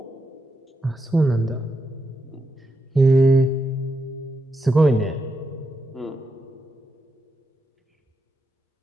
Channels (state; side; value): normal; both; correlation 0.84